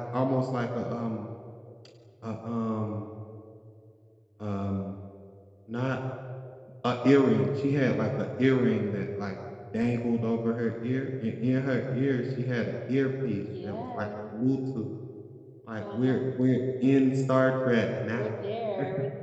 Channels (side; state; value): both; identical; correlation 1.00